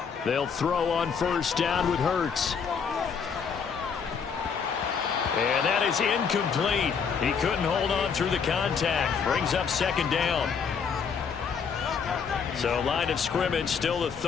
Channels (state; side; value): quieter; right; 6.3 dB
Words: They'll throw on first down with Hurts. And that is incomplete. He couldn't hold on through the contact. Brings up 2nd down. So line of scrimmage still the